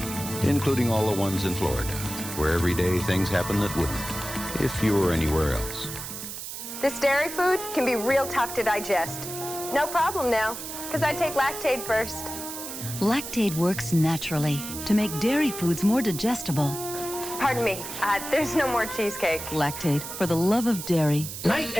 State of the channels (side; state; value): right; noise; hiss, 8 dB below the sound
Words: including all the ones in Florida, where every day things happen that wouldn't if you were anywhere else. This dairy food can be real tough to digest. No problem now, because I take Lactaid first. Lactaid works naturally to make dairy foods more digestible. Pardon me, there's no more cheesecake. Lactaid, for the love of dairy. Night